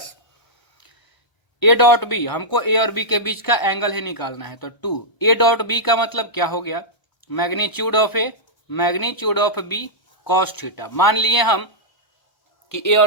ए डॉट बी, हमको ए और बी के बीच का एंगल ही निकालना है, तो 2। ए डॉट बी का मतलब क्या हो गया, magnitude of A magnitude of B cos theta. मान लिए हम कि ए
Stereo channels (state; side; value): late; right; 1.3 ms